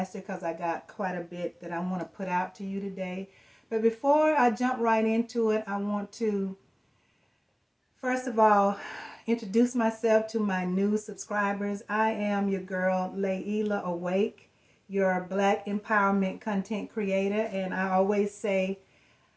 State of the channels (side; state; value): both; identical; correlation 1.00